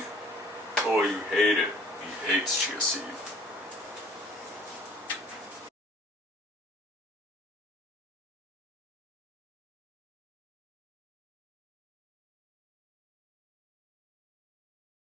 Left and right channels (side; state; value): both; normal; correlation 0.52